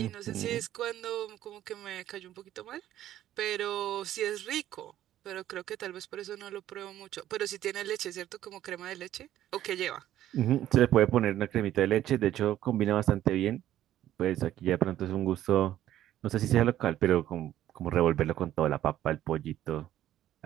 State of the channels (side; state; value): left; quieter; 12.6 dB